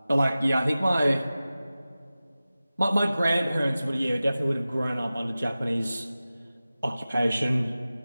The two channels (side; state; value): both; inverted; correlation -0.96